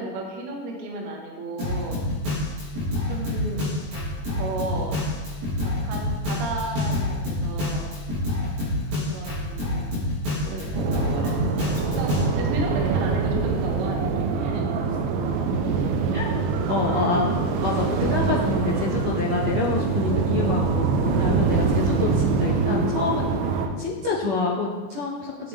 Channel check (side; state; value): left; late; 21 ms